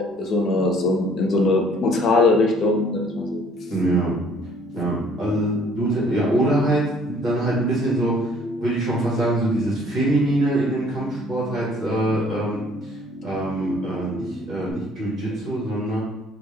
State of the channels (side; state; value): both; normal; correlation 0.58